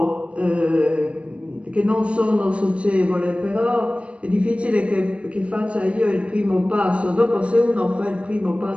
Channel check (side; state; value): left; late; 0.061 ms